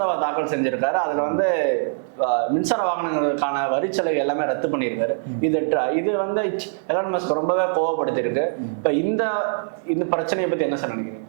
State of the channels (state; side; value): silent; left; digital silence